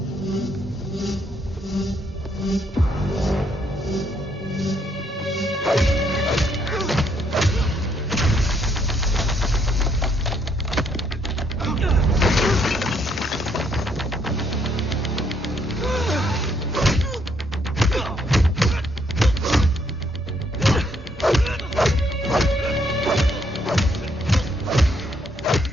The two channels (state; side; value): normal; both; correlation 0.71